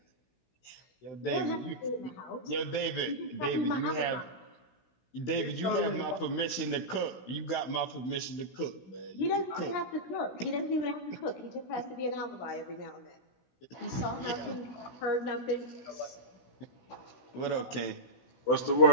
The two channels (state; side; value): late; right; 16 ms